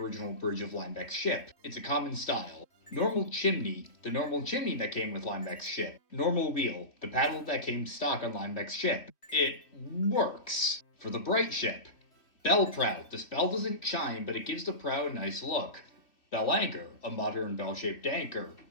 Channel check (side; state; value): right; late; 3.2 ms